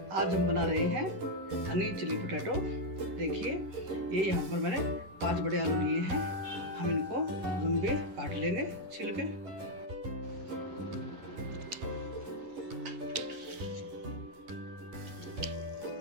आज हम बना रहे हैं हनी चिली पोटैटो। देखिए, ये यहाँ पर मैंने 5 बड़े आलू लिए हैं। हम इनको लंबे काट लेंगे छील के।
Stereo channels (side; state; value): left; late; 11 ms